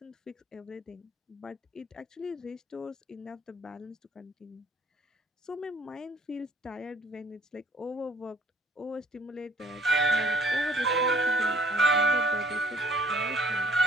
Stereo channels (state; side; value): normal; both; correlation 0.58